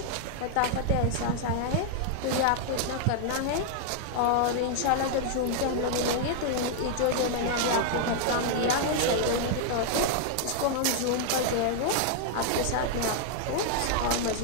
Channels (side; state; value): both; different; correlation 0.00